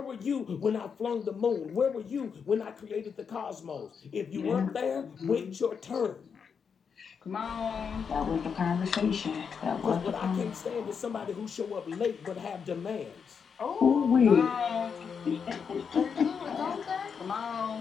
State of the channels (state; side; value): quieter; right; 6.4 dB